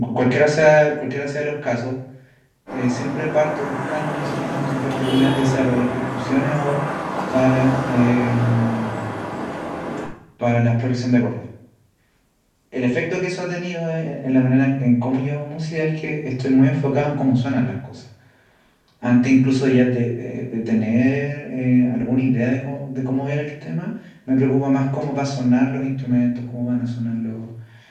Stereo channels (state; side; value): identical; both; correlation 1.00